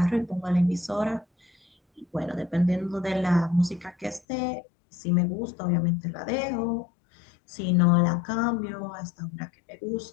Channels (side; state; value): right; drops out; at 4.2 s